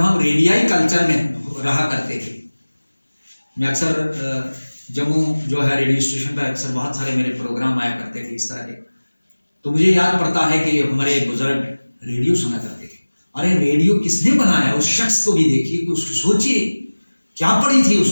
रेडियाई कल्चर में रहा करते थे, मैं अक्सर जम्मू जो है रेडियो स्टेशन पर अक्सर बहुत सारे मेरे प्रोग्राम आया करते थे इस तरह के, तो मुझे याद पड़ता है कि हमारे बुजुर्ग रेडियो सुना करते थे। अरे रेडियो किसने बनाया, उस शख्स को भी देखिए, कि उसको सोचिए क्या पड़ी थी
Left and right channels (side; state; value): both; inverted; correlation -1.00